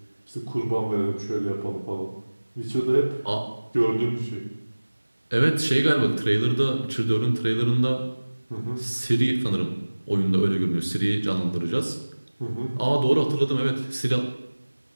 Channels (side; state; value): both; inverted; correlation -1.00